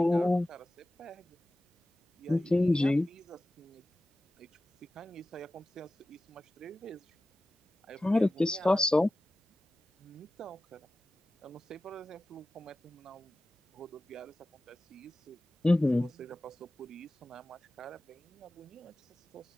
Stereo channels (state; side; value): normal; both; correlation 0.95